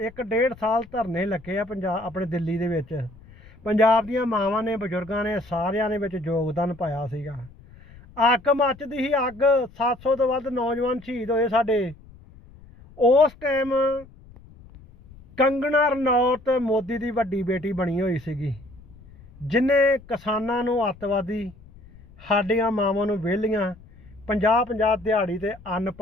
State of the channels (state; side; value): noise; left; rumble, 22 dB below the sound